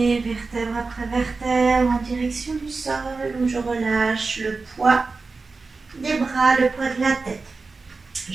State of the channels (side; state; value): left; quieter; 4.1 dB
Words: vertèbre après vertèbre en direction du sol où je relâche le poids des bras, le poids de la tête.